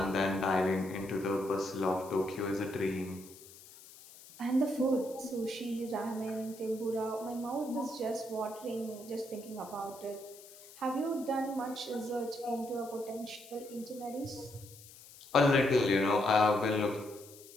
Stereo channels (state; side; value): noise; left; hiss, 19 dB below the sound